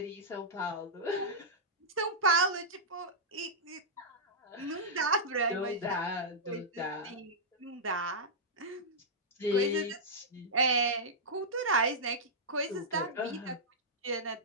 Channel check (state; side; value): normal; both; correlation -0.09